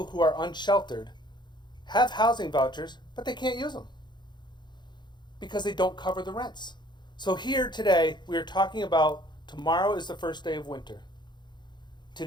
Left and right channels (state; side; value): late; right; 0.21 ms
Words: who are unsheltered have housing vouchers, but they can't use them because they don't cover the rents. So here today, we are talking about tomorrow is the first day of winter.